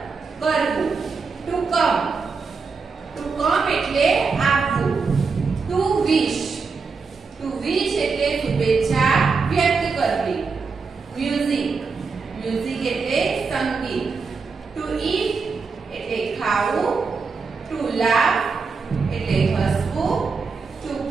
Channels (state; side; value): quieter; left; 4.8 dB